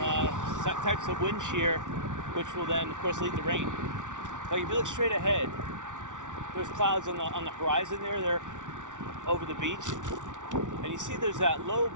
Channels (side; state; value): left; late; 0.87 ms